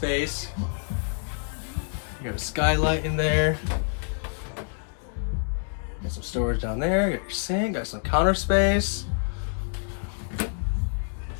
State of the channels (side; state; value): right; silent; 60 dB below the other